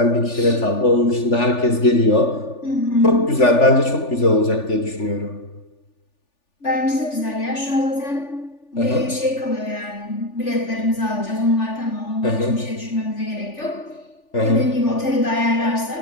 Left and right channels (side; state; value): right; late; 3.4 ms